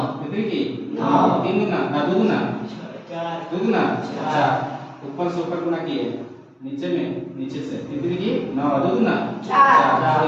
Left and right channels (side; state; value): both; identical; correlation 1.00